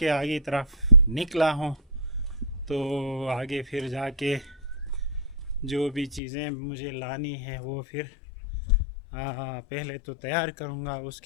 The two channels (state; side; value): drops out; right; at 6.2 s